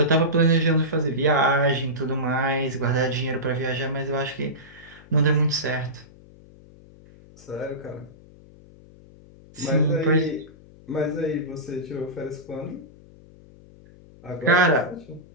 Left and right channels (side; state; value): left; noise; hum, 23 dB below the sound